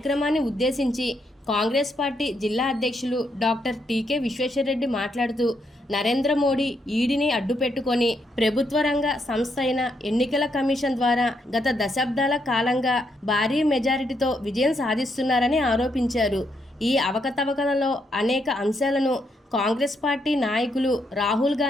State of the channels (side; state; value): both; normal; correlation 0.77